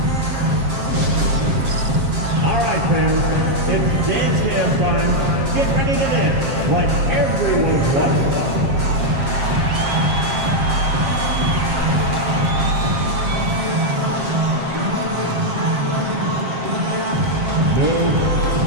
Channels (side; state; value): left; late; 7.4 ms